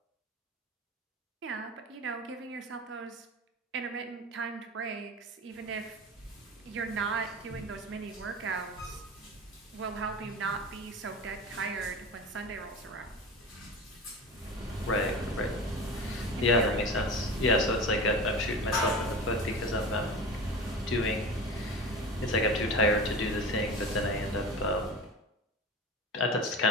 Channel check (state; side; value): normal; both; correlation 0.32